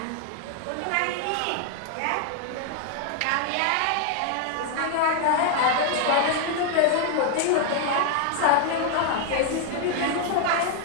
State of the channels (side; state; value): both; different; correlation 0.00